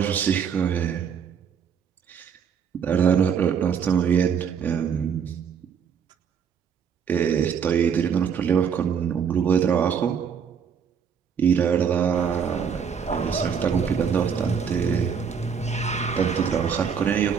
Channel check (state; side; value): quieter; left; 7.1 dB